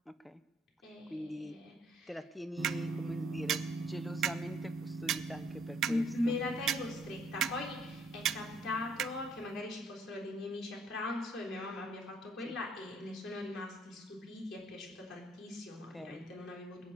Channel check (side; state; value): both; normal; correlation 0.65